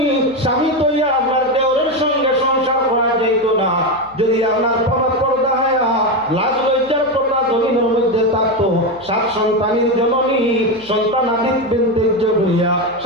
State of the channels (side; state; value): left; noise; hum, 27 dB below the sound